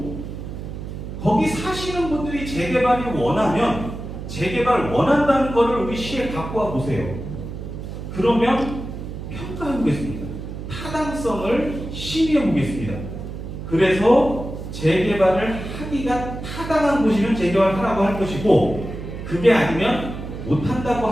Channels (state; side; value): noise; right; hum, 8 dB below the sound